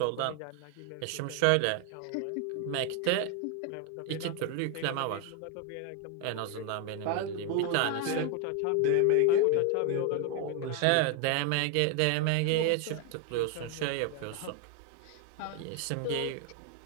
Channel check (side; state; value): both; different; correlation 0.01